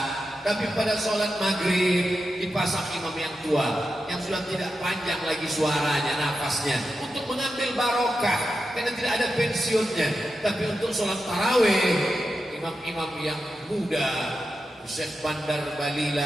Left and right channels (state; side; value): normal; both; correlation 0.89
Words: tapi pada sholat maghrib dipasang imam yang tua, yang sudah tidak panjang lagi suaranya, nafasnya, untuk mengambil barokah, karena tidak ada pensiunnya. Tapi untuk sholat tarawih, imam-imam yang muda, Syekh Bandar